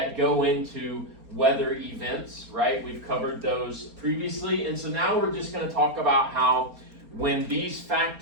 go into weather events, right? We've covered those previously, and so now we're just going to talk about how when these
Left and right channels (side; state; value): left; late; 4.3 ms